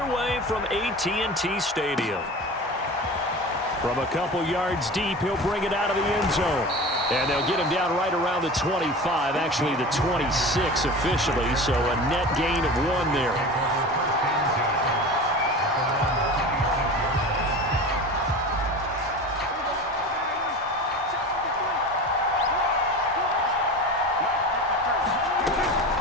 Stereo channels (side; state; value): both; normal; correlation 0.33